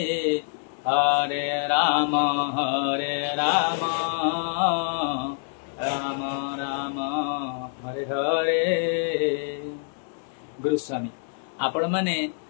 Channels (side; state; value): right; silent; 61 dB below the other